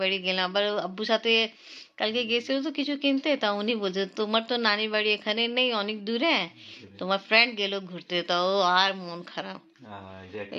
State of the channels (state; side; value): identical; both; correlation 1.00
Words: বাড়ি গেলাম। আবার আব্বুর সাথে কালকে গেছিল তো কিছু কিনতে, তা উনি বলছে তোমার তো নানি বাড়ি এখানে নেই, অনেক দূরে, তোমার ফ্রেন্ড গেল ঘুরতে, তাও আর মন খারাপ।